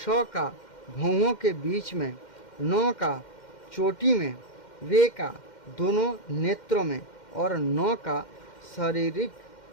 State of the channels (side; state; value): right; late; 2.1 ms